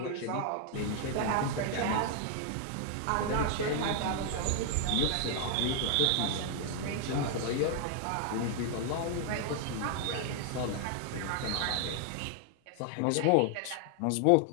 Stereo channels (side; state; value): both; different; correlation 0.00